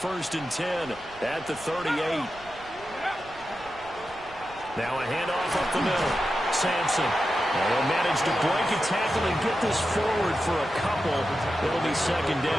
and 10 at the 38. Now a handoff up the middle. Sampson. They'll manage to break a tackle and get this forward for a couple. It'll be 2nd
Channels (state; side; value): noise; right; rumble, 22 dB below the sound